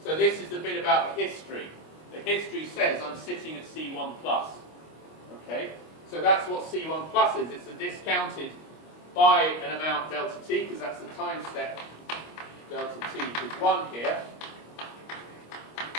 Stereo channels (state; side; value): late; right; 25 ms